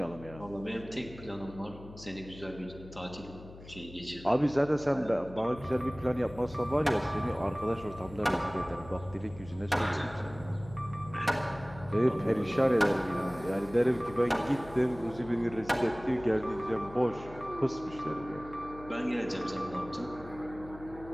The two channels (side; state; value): left; noise; hum, 17 dB below the sound